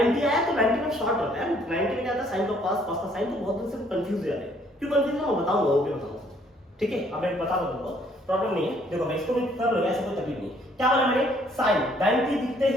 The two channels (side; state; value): both; normal; correlation 0.64